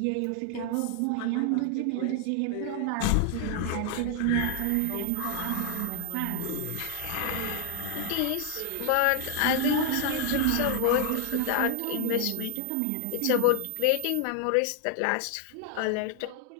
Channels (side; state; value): both; different; correlation 0.00